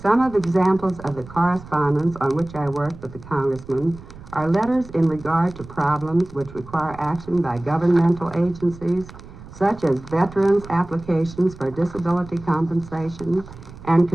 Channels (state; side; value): noise; right; rumble, 17 dB below the sound